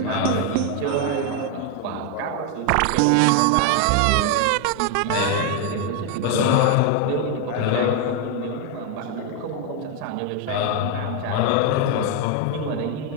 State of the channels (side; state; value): both; different; correlation 0.01